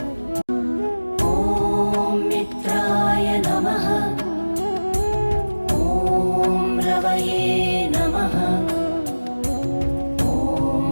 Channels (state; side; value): inverted; both; correlation -1.00